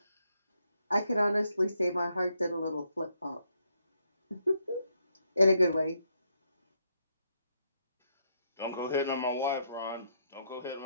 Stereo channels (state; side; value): inverted; both; correlation -0.77